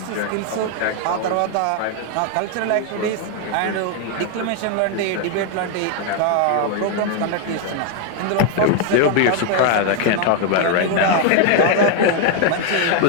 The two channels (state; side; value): different; both; correlation 0.01